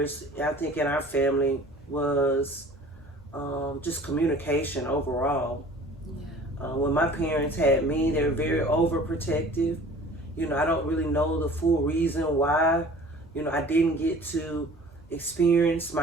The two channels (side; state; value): both; normal; correlation 0.47